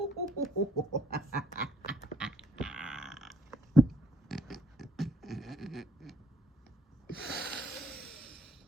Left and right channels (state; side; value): normal; both; correlation 0.66